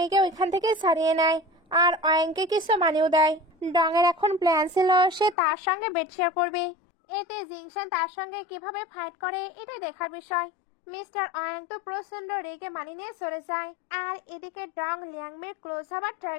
ওইখান থেকে ছাড়িয়ে নেয়, আর ওয়াংকে কিছু মানিয়েও দেয়। ডং এর এখন প্ল্যান ছিল সে তার সঙ্গে বেড শেয়ার করবে। এতে জিংশান তার সঙ্গে কিভাবে ফাইট করে এটা দেখার বিষয়। মিস্টার ওয়াং তো প্রচন্ড রেগে মানি নিয়ে চলে যায়, আর এদিকে ডং লিয়াংমির ক্লোজ হবার ট্রাই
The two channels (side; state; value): right; drops out; at 5.4 s